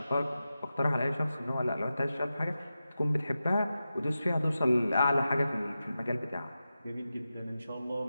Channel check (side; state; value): both; inverted; correlation -0.92